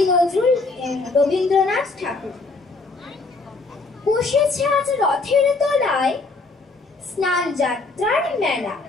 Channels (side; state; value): right; quieter; 3.6 dB